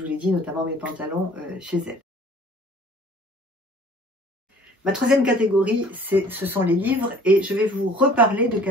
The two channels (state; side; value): normal; both; correlation 0.52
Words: vous l'ai dit, notamment mes pantalons chez elle. Ma troisième catégorie, ce sont les livres, et je vais vous reparler de